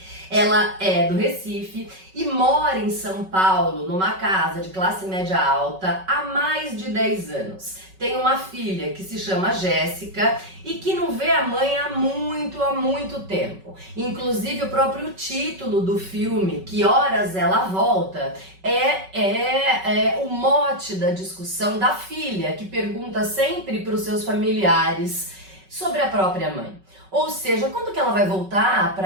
Ela é do Recife e mora em São Paulo, numa casa de classe média alta, há mais de 10 anos. Tem uma filha que se chama Jéssica e que não vê a mãe há muito tempo. Inclusive o próprio título do filme, Que Horas Ela Volta, é o mote da discussão da filha, que pergunta sempre para os seus familiares sobre a própria mãe. Ou seja, quando que ela vai voltar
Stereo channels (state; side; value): late; left; 5.3 ms